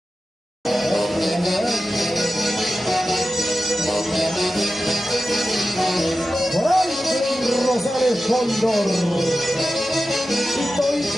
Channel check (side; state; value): both; normal; correlation 0.93